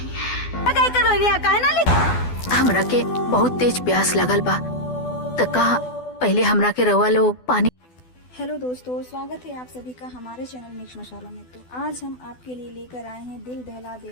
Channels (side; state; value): right; late; 12 ms